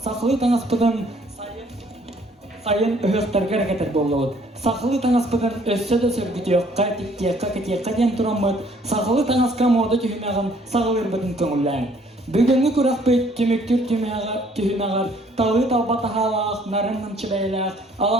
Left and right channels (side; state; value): both; normal; correlation 0.61